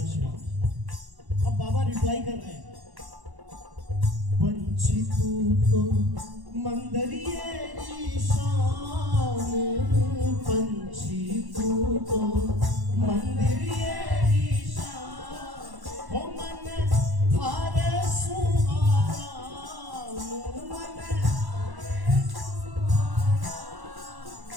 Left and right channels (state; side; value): late; left; 1.1 ms